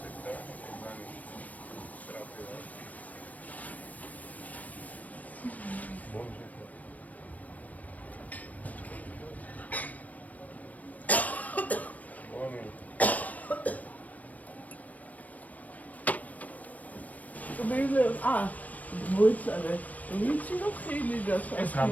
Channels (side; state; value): right; late; 0.073 ms